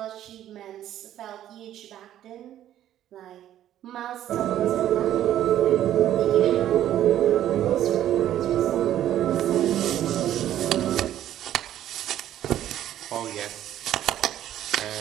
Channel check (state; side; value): quieter; left; 11.9 dB